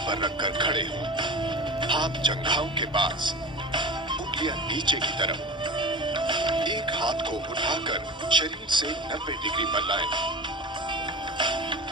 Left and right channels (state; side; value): normal; both; correlation 0.32